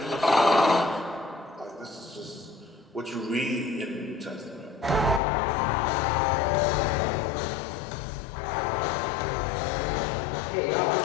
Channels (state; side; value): drops out; right; at 5.2 s